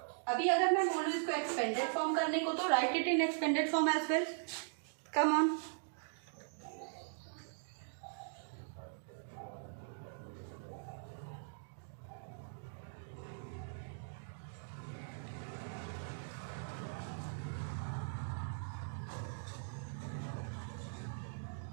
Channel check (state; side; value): silent; left; digital silence